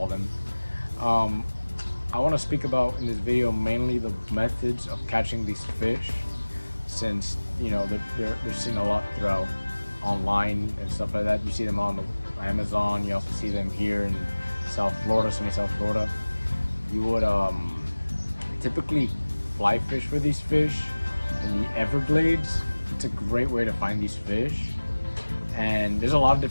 them. Um, I want to speak about in this video mainly the methods of catching these fish, since you know they're seen a lot throughout online and stuff like that. You see them on the Amazon. You also see them here in South Florida, sunny South Florida. You would typically fly fish for these fish in the Everglades. It's a great way to find these fish, and there's a lot of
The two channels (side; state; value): both; inverted; correlation -1.00